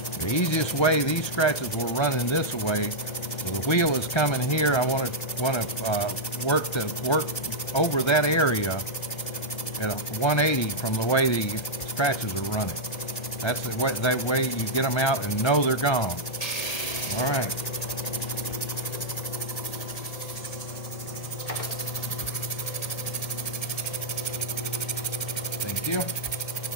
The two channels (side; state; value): right; late; 1.3 ms